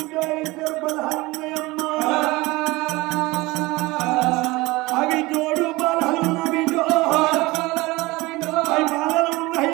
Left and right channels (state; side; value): quieter; left; 21.6 dB